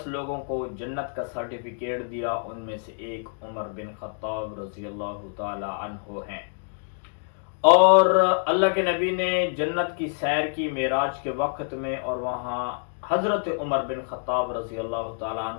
لوگوں کو جنت کا سرٹیفکیٹ دیا، ان میں سے ایک عمر بن خطاب رضی اللہ تعالیٰ عنہ ہیں۔ اور اللہ کے نبی نے جنت کی سیر کی معراج کے وقت میں، اور وہاں حضرت عمر بن خطاب رضی اللہ تعالیٰ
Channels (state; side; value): silent; right; digital silence